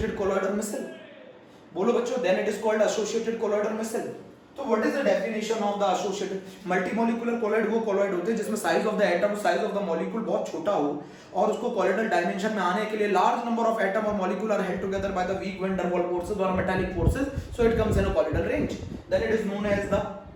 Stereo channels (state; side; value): identical; both; correlation 1.00